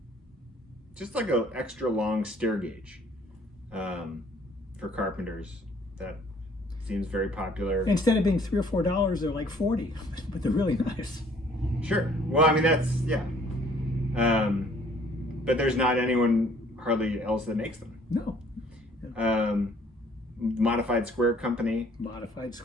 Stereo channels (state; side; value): normal; both; correlation 0.58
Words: just like a extra long stair gauge for carpenters. That seems very popular. Instead of being $3 or $4, they're like $40, but they're really nice. Sure. Well, I mean that's but there's not anyone hardly else that makes them. No. Yeah. Modified Square Company. Modified